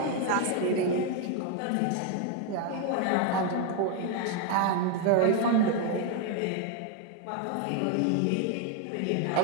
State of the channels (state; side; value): different; both; correlation 0.01